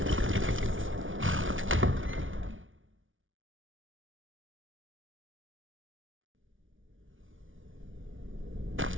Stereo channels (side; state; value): left; late; 0.57 ms